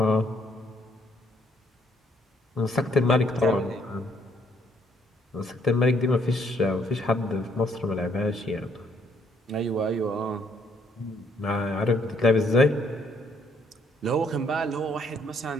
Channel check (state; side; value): normal; both; correlation 0.68